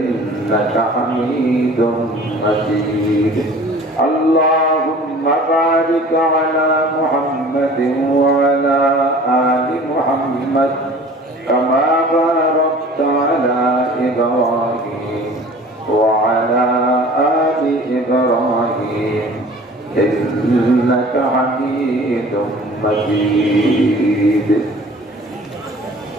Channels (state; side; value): normal; both; correlation 0.46